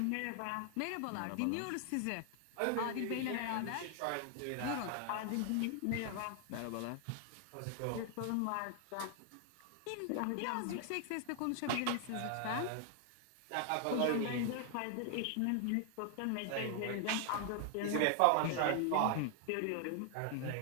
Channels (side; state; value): both; different; correlation 0.00